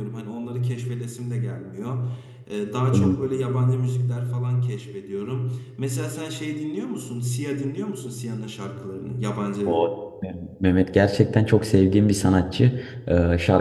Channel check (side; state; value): both; identical; correlation 1.00